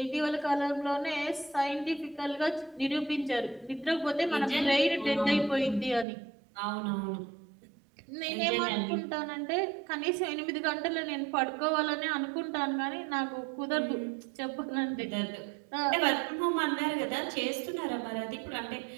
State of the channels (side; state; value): left; drops out; at 6.1 s